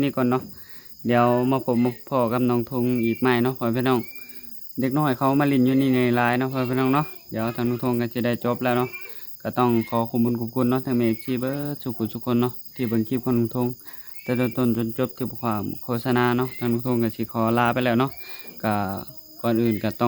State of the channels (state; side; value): identical; both; correlation 1.00